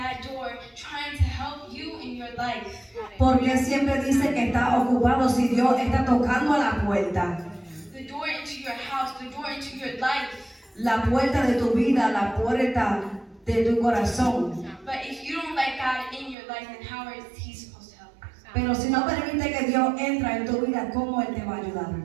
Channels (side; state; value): left; drops out; at 16.4 s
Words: door, trying to help you in your life. Porque siempre dice que está ocupado si Dios está tocando a la puerta. The door into your house, the door into your life. La puerta de tu vida, la puerta de tu corazón. But if you don't let God in your life, then how is He supposed to help you? Pero si no permite que Dios entre en tu vida, ¿cómo Él te va a ayudar?